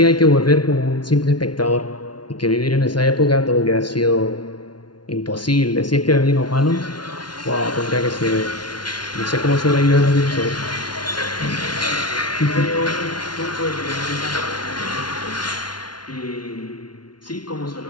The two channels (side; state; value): right; late; 0.70 ms